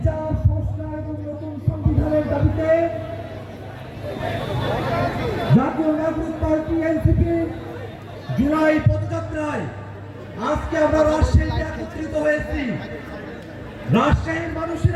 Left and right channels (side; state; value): both; identical; correlation 1.00